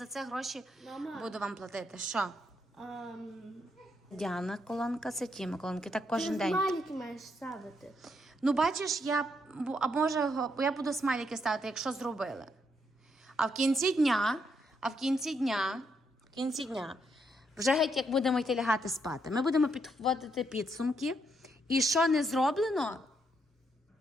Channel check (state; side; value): normal; both; correlation 0.77